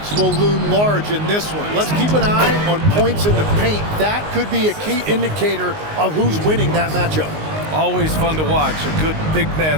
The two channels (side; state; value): left; late; 19 ms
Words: will loom large in this one. Let's keep an eye on points in the paint. That could be a key indicator of who's winning that matchup. Always fun to watch a good big